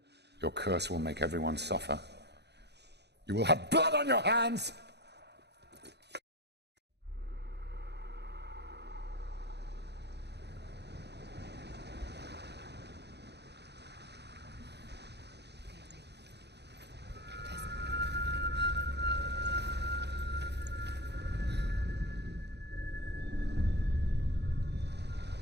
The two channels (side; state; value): left; late; 0.49 ms